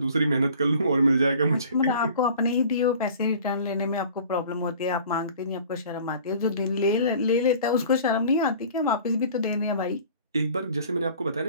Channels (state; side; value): inverted; both; correlation -0.47